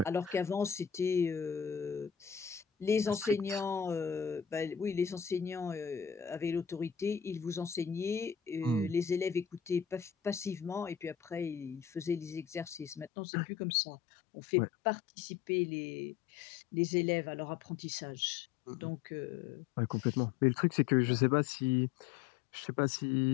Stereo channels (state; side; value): drops out; right; at 13.1 s